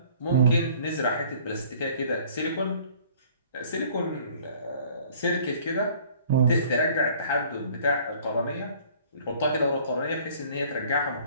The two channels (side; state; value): both; inverted; correlation -0.54